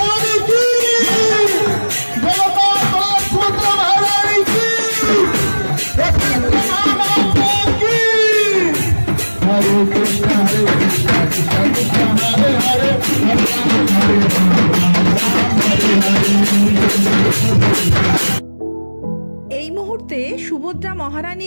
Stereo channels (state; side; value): inverted; both; correlation -1.00